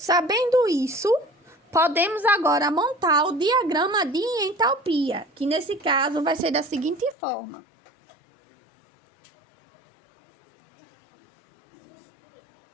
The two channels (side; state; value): right; drops out; at 7.2 s